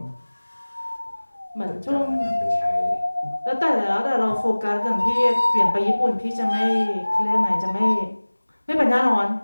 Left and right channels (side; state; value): both; inverted; correlation -1.00